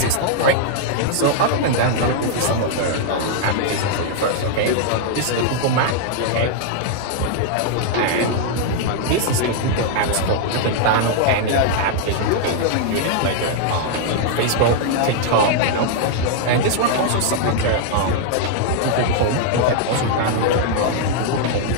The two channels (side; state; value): both; different; correlation 0.00